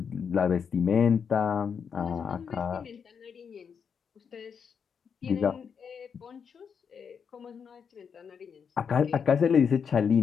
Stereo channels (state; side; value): quieter; right; 6.7 dB